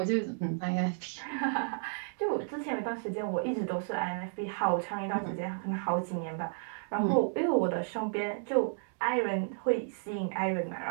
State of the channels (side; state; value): left; silent; digital silence